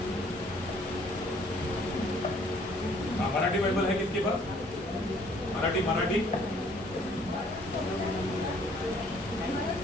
Marathi Bible है किसके पास? मराठी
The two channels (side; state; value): both; normal; correlation 0.60